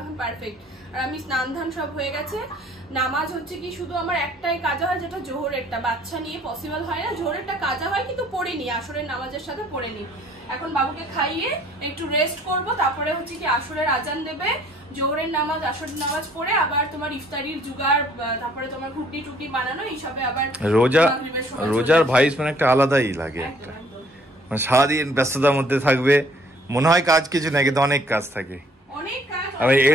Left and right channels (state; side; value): normal; both; correlation 0.60